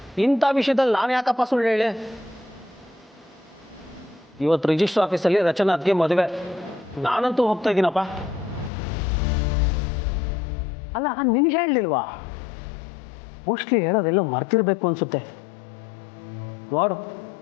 ಇಂಥ ವಿಷಯದಲ್ಲಿ ನಾನು ಯಾಕಪ್ಪ ಸುಳ್ಳು ಹೇಳಿ? ಇವತ್ತು ರಿಜಿಸ್ಟರ್ ಆಫೀಸಲ್ಲಿ ರಚನಾ ಅತ್ತಿಗೆ ಮದುವೆ. ನಾನಂತೂ ಹೋಗ್ತಾ ಇದ್ದೀನಪ್ಪ. ಅಲ್ಲ, ನಿನ್ಗೆ ಹೇಳಲಿಲ್ವಾ? ಮೋಸ್ಟ್ಲಿ ಹೇಳೋದೆಲ್ಲೋ ಮರ್ತಿರ್ಬೇಕು ಅನ್ಸುತ್ತೆ. ನೋಡು,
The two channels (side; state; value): right; drops out; at 8.7 s